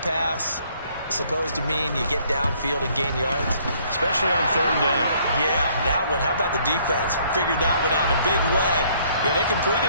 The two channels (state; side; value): inverted; both; correlation -0.63